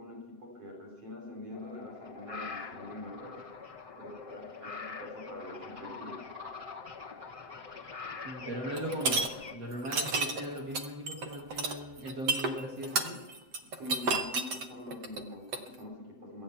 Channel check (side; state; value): left; late; 7.8 ms